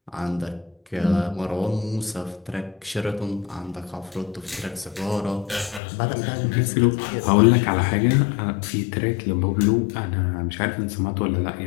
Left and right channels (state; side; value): drops out; right; at 5.8 s